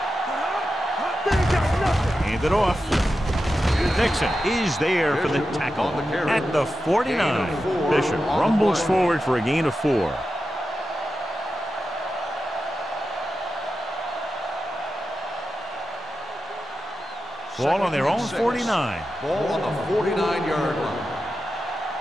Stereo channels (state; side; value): normal; both; correlation 0.91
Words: They ain't got nothing. Hand it off. Nixon is there for the tackle at the 49. Bishop rumbles forward for a gain of 4. Ball on their own 49. Ball on the 49-yard line.